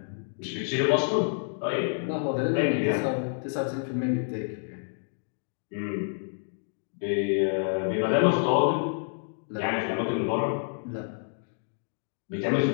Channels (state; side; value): silent; right; digital silence